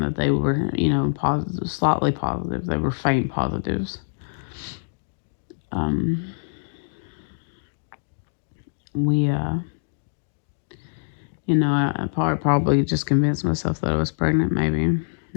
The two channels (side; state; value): right; silent; digital silence